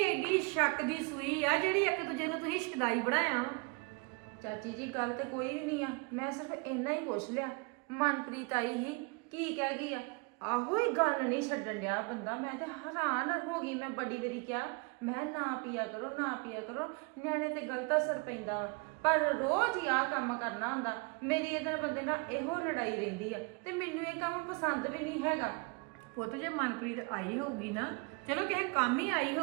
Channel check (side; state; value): left; quieter; 30.5 dB